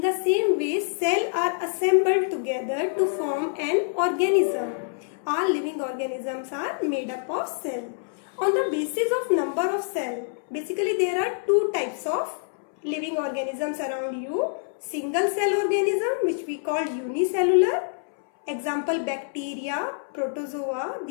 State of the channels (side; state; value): right; silent; 61 dB below the other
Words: the same way cells are assembled together to form an organism. All living organisms are made up of cell. On the basis of number of cells, basically there are two types of living organisms around you. Single cell organism, which we call unicellular. Example, bacteria, protozoa,